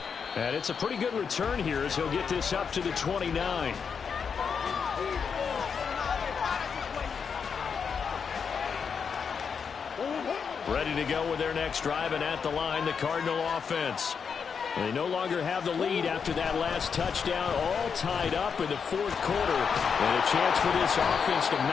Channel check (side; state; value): right; quieter; 6.3 dB